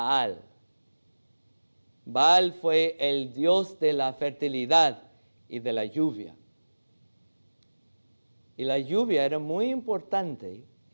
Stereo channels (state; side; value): inverted; both; correlation -1.00